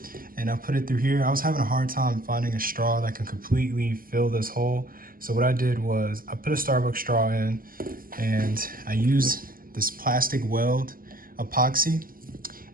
and I put it through here. I was having a hard time finding a straw that can completely fill this hole. So what I did was I put a Starbucks straw in and I used this plastic weld epoxy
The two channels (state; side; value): late; left; 0.42 ms